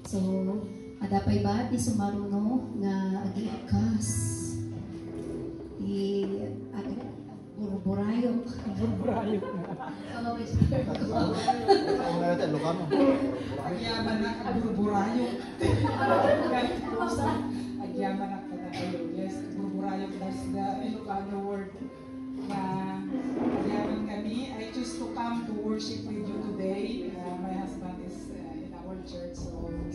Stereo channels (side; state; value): both; identical; correlation 1.00